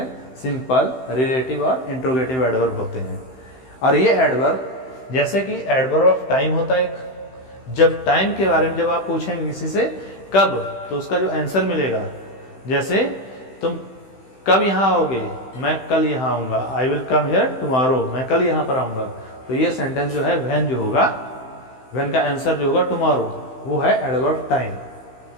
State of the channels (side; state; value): right; late; 15 ms